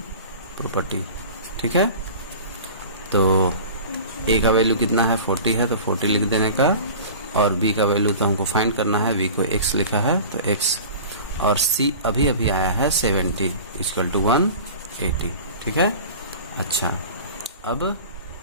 प्रॉपर्टी। ठीक है, तो A का वैल्यू कितना है 40 है तो 40 लिख देने का, और B का वैल्यू तो हमको फाइंड करना है, B को x लिखा है तो x, और C अभी आया है 70 इक्वल टू 180। ठीक है, अच्छा अब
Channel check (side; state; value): both; inverted; correlation -0.38